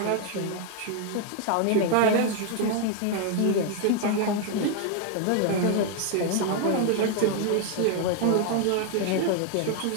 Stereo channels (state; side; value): different; both; correlation 0.01